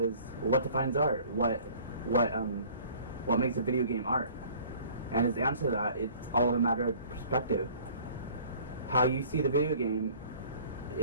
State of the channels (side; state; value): both; inverted; correlation -0.51